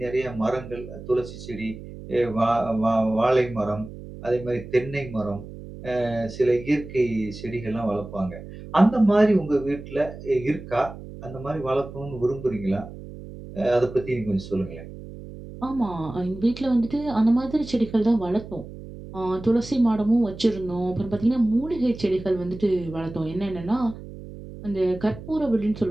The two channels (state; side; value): noise; right; hum, 14 dB below the sound